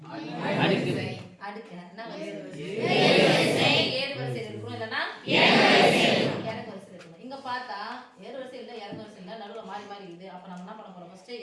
அடுக்கு என்ன ஏறு வரிசையில் இருக்கும், இல்லைன்னா இறங்கு வரிசையில் இருக்கணும். இங்க பார்த்தா ஏறு வரிசை இல்லை, இறங்கு வரிசை இல்லை, நடுவில் மாறி மாறி இருக்குது. அப்ப நம்ம என்ன பண்ண போறோம்? ஃபர்ஸ்ட்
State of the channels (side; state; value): both; identical; correlation 1.00